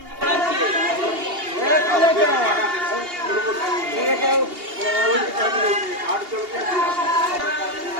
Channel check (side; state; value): left; late; 2.8 ms